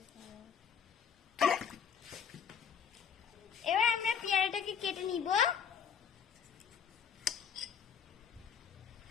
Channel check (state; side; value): quieter; right; 7.5 dB